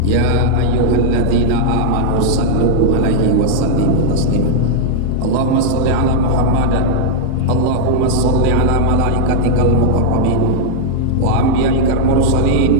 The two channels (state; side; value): different; both; correlation -0.01